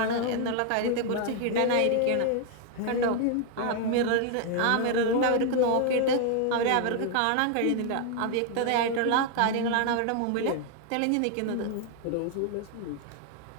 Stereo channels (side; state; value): both; different; correlation 0.00